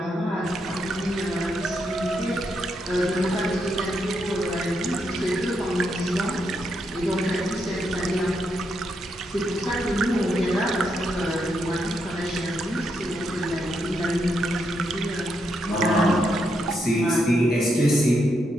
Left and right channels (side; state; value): both; normal; correlation 0.80